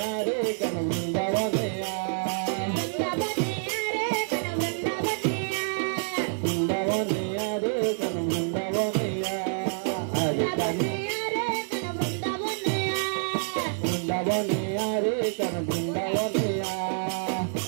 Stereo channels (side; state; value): left; silent; digital silence